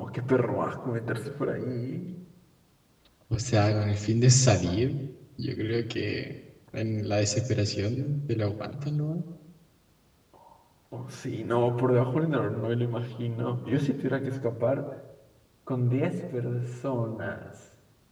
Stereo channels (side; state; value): both; identical; correlation 1.00